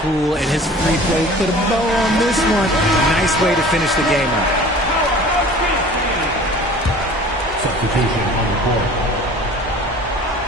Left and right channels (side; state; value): both; normal; correlation 0.45